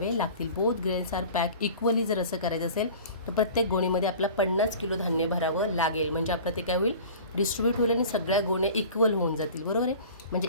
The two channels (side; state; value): both; inverted; correlation -0.41